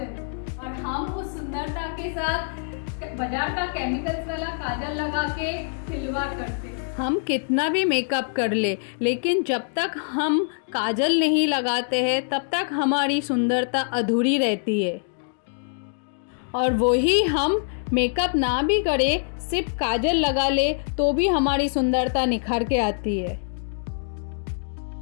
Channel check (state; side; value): silent; right; digital silence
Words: और हम उस सुंदरता के साथ बाजार का केमिकल्स वाला काजल लगा के खिलवाड़ करते हैं। हम कितना भी मेकअप कर ले, लेकिन जब तक हम काजल नहीं लगाते हैं तब तक हमारी सुंदरता अधूरी रहती है। और वही हम मेकअप ना भी करें, सिर्फ काजल लगा ले तो भी हमारी सुंदरता निखर के आती है।